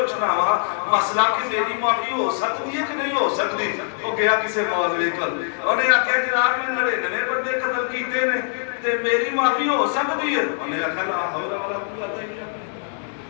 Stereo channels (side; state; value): right; silent; digital silence